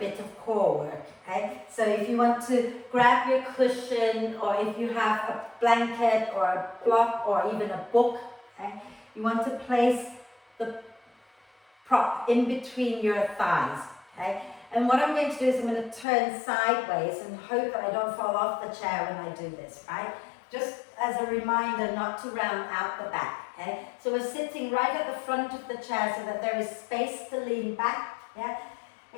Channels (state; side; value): drops out; right; at 16.1 s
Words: of core work. Okay? So if you want to grab your cushion, or if you have a blanket or a block or even a book, okay? You want to place the prop in between your thighs. Okay? And what I'm going to do is I'm going to turn sideways and hope that I don't fall off the chair when I do this, right? Just as a reminder not to round out the back, okay? So we're sitting right at the front of the chair so that there is space to lean back, yeah?